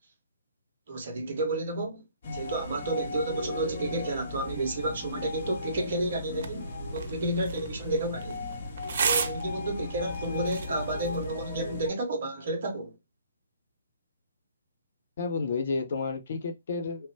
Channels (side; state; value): both; inverted; correlation -0.58